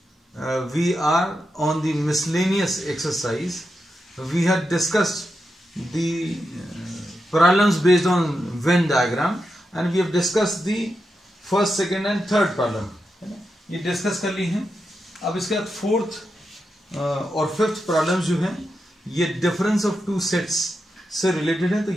we are on the miscellaneous exercise. We had discussed the problems based on Venn diagram and we have discussed the first, second and third problem. ये discuss कर ली हैं. अब इसके बाद fourth और fifth problems जो हैं ये डिफरेंस ऑफ टू सेट्स से रिलेटेड है, तो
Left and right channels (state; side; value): normal; both; correlation 0.87